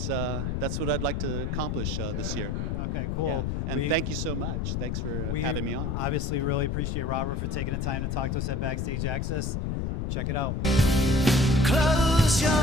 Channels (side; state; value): left; noise; rumble, 1 dB below the sound